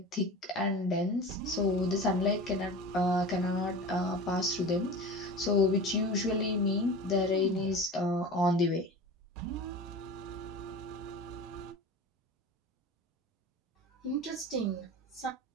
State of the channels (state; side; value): normal; both; correlation 0.34